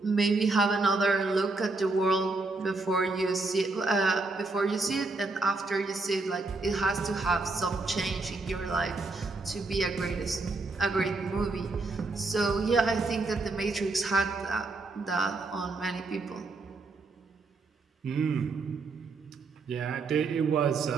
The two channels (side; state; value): left; quieter; 3.5 dB